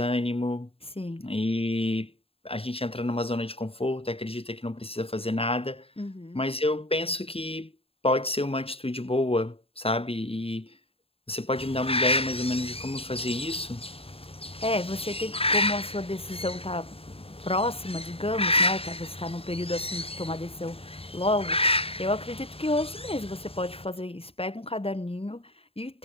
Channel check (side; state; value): right; late; 0.28 ms